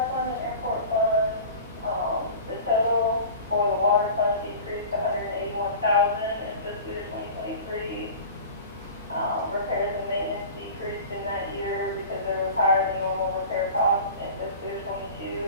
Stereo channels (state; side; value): inverted; both; correlation -0.38